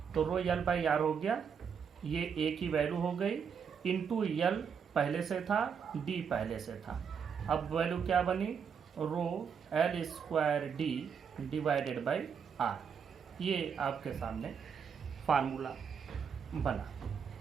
तो रो एल बाई आर हो गया, ये ए की वैल्यू हो गई, इंटू यल पहले से था, डी पहले से था। अब वैल्यू क्या बनी, rho L square D divided by R. ये आपके सामने फार्मूला बना।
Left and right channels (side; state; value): left; quieter; 6.8 dB